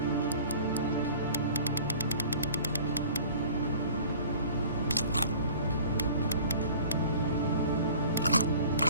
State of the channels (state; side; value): inverted; both; correlation -0.47